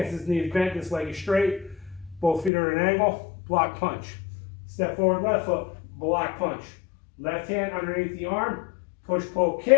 this knee is bent, this leg is straight. Both feet are at an angle, block punch. Step forward, left foot, block punch. Left hand underneath the arm, push, pull,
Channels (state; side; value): drops out; right; at 2.5 s